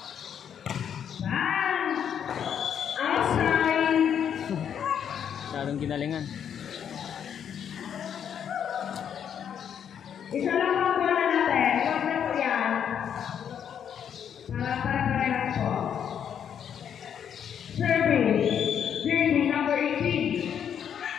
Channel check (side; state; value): right; quieter; 8.5 dB